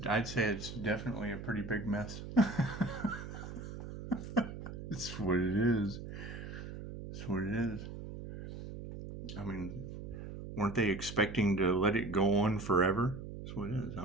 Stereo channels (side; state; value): right; noise; hum, 9 dB below the sound